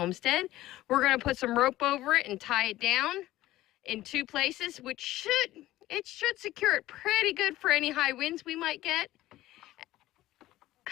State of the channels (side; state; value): right; quieter; 15.9 dB